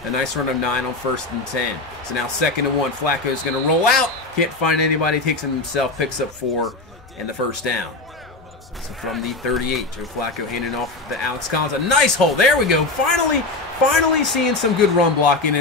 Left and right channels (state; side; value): quieter; right; 3.2 dB